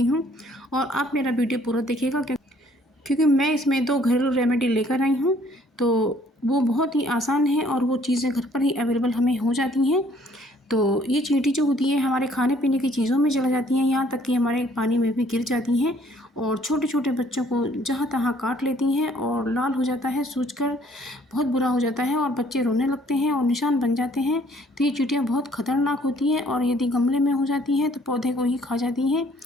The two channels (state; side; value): normal; both; correlation 0.61